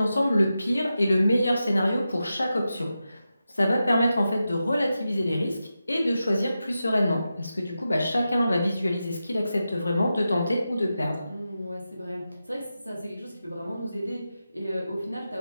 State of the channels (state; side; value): inverted; both; correlation -0.91